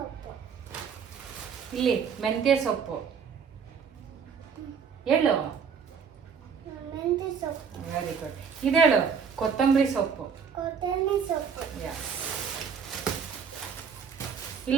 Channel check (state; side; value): quieter; left; 6.5 dB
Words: ಇಲ್ಲಿ ಮೆಂತ್ಯ ಸೊಪ್ಪು. ಹೇಳು. Very good. ಇದೇಳು ಕೊತ್ತಂಬರಿ ಸೊಪ್ಪು.